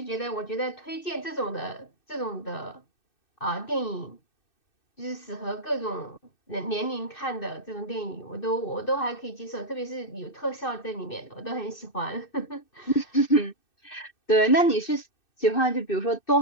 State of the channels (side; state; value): right; late; 2.6 ms